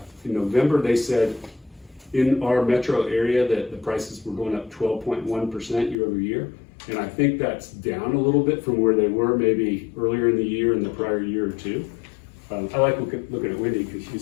in November, they said in our metro area that the prices were going up 12.1% year over year. And I think that's down a little bit from where they were maybe earlier in the year and the prior year or two. I like looking at Wendy because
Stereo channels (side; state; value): right; drops out; at 6.0 s